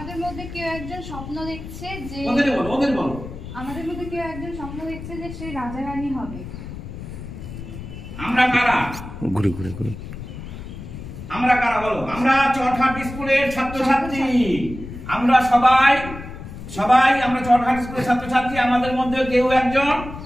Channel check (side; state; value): left; noise; rumble, 11 dB below the sound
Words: মধ্যে কেউ একজন স্বপ্ন দেখছে যে ওদের বলো। আমাদের মধ্যে কেউ একজন স্বপ্ন দেখছে যে সে রাজা রানী হবে। আমরা কারা? ঘুরে আমরা কারা বলো? আমরা চরঘাট স্কুলের ছাত্রছাত্রী। আমরা সবাই আমরা চরঘাট স্কুলের ছাত্রছাত্রী। আমাদের মধ্যে কেউ একজন